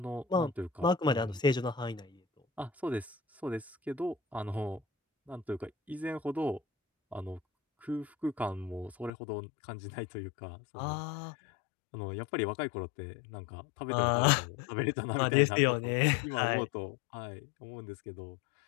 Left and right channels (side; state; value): right; drops out; at 9.1 s